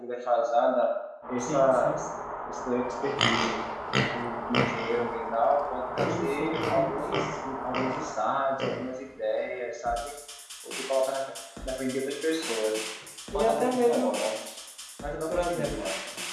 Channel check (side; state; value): both; identical; correlation 1.00